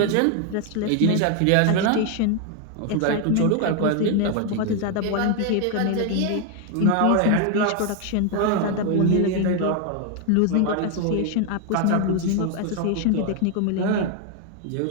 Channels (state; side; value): different; both; correlation 0.00